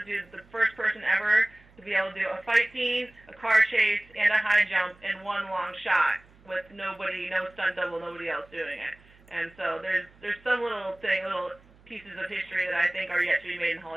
do the first person ever to be able to do a fight scene, a car chase, and a high jump in one long shot with nobody, no stunt double, nobody else doing it. And so there's some little pieces of history that I think are yet to be made in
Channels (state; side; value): noise; right; hum, 27 dB below the sound